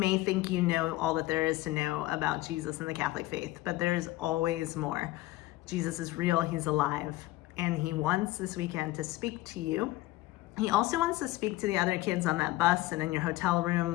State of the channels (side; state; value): right; quieter; 18.1 dB